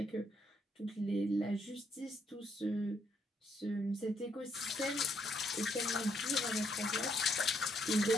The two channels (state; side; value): normal; both; correlation 0.73